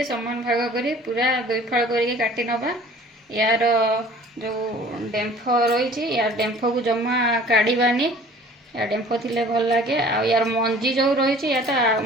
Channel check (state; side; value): normal; both; correlation 0.49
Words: समान भाग करी पूरा दुई फल करके काटी नबा। यार जो डेम्फ रही यार डेम्फ को जमा काढ़ानी। यार डेम्फ थिले भल लगे। आ यार मंजी जो रही या